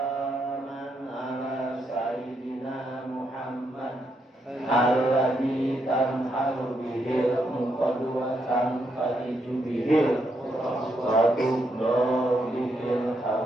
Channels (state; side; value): normal; both; correlation 0.79